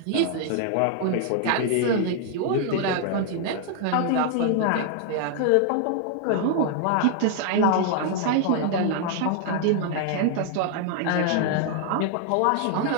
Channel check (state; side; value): different; both; correlation 0.00